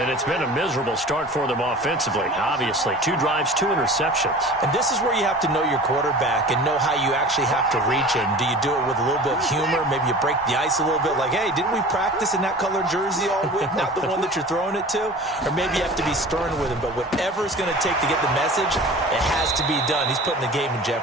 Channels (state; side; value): normal; both; correlation 0.39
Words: it's been a miserable start for them offensively, obviously. 2 drives, 2 interceptions. And this is where you have to know your quarterback and know how you actually have to reach him. Do you do it with a little bit of humor? Maybe you break the ice a little bit like, hey, didn't we practice in that color jersey all week? Not the one that you're throwing it to? Or maybe you have to be stern with him. But whatever it's going to take to get the message, it has to be done. He's putting the game in